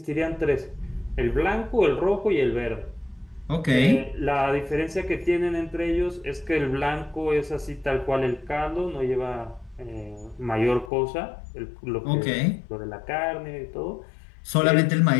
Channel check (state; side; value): drops out; right; at 10.9 s